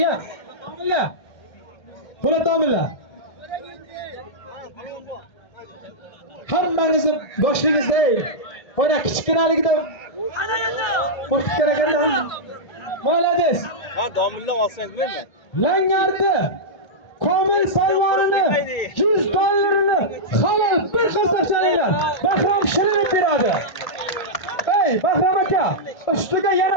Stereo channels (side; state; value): right; late; 1.8 ms